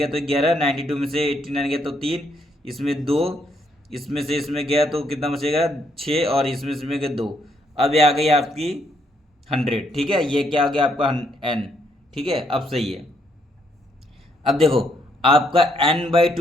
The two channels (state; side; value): normal; both; correlation 0.72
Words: तो 11, 92 में से 89 गया तो 3, इसमें 2 इसमें से इसमें गया तो कितना बचेगा 6, और इसमें से इसमें गया 2। अब ये आ गई आपकी 100, ठीक है। ये क्या आ गया आपका n, ठीक है। अब सही है। अब देखो आपका